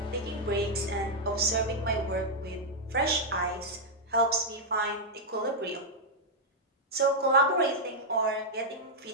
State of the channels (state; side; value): normal; both; correlation -0.04